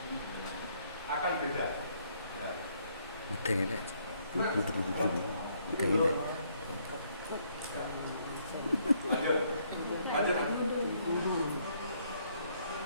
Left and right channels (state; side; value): inverted; both; correlation -0.69